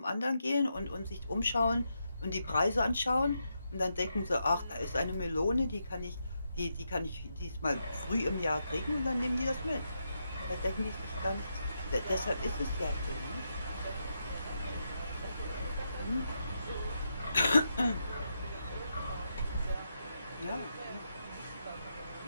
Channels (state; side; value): inverted; both; correlation -0.83